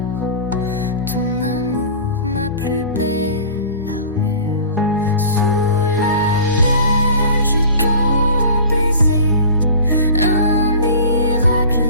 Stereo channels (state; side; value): inverted; both; correlation -0.39